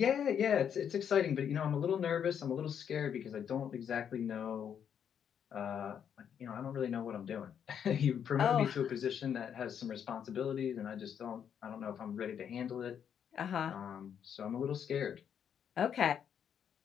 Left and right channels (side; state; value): right; quieter; 8.3 dB